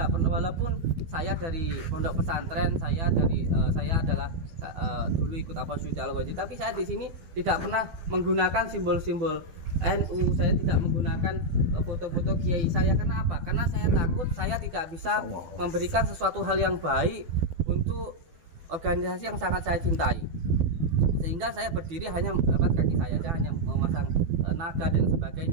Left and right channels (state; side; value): late; left; 12 ms